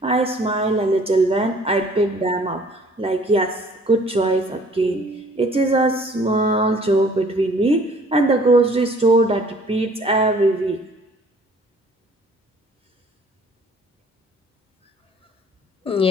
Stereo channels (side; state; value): both; normal; correlation 0.55